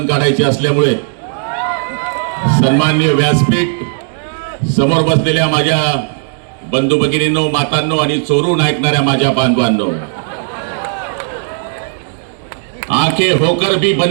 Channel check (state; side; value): silent; left; digital silence